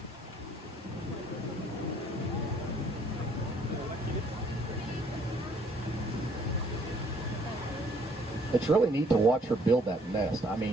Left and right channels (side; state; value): both; normal; correlation 0.62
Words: It's really neat to watch her build that nest. I